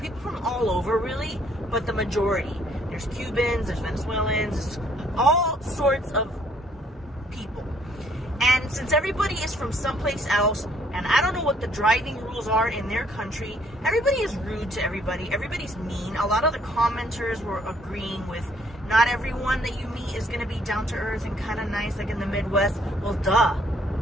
from all over really, but the majority. There's Cubans, there's Venezuelans, there's all sorts of people. And since everybody is from someplace else, and I don't know what the driving rules are in their country, everybody is rude to everybody. Everybody's mean. A lot of the commenters were agreeing with not everyone that you meet is going to be down to earth and kind of nice like in the Midwest. Well, duh.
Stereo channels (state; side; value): normal; both; correlation 0.64